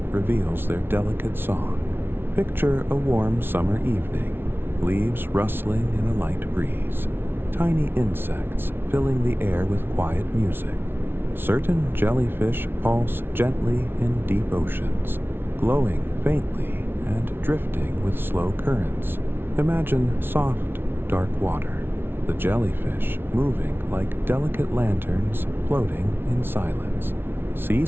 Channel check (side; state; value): left; late; 0.11 ms